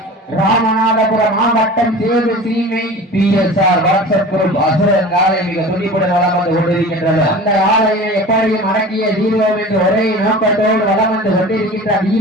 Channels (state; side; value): normal; both; correlation 0.38